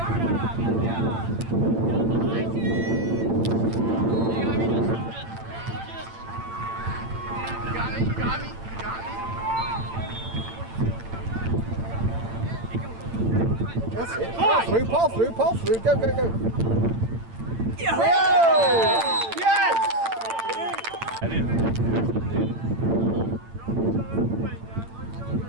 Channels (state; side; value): late; left; 8.9 ms